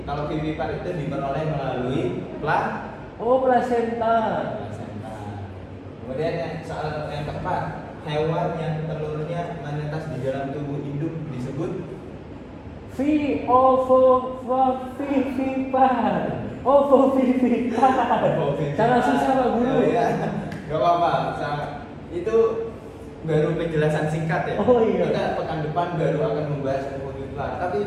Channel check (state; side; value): identical; both; correlation 1.00